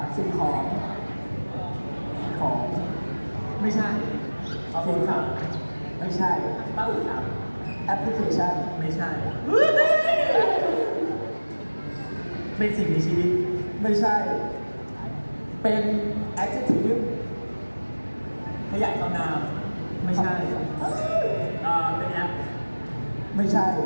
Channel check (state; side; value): inverted; both; correlation -1.00